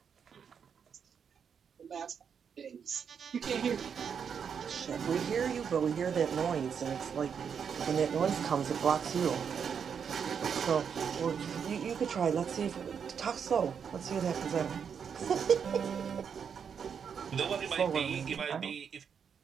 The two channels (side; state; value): left; quieter; 7.1 dB